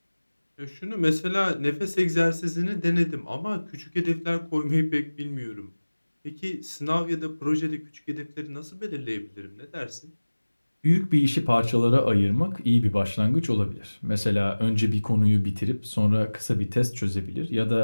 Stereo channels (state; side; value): inverted; both; correlation -1.00